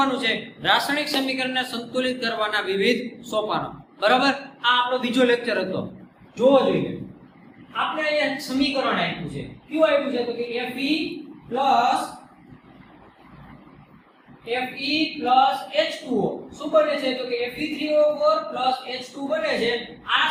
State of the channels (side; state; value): both; identical; correlation 1.00